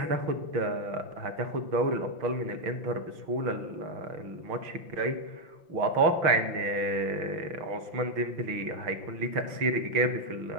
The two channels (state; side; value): late; left; 5.9 ms